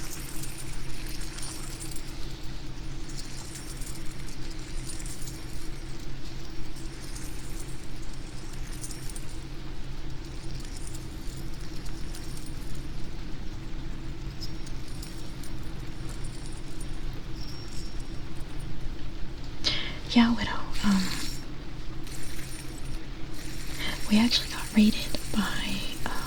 Yeah, Widow. We actually got raided by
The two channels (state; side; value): identical; both; correlation 1.00